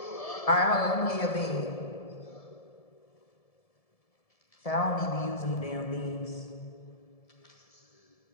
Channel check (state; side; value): late; right; 1.7 ms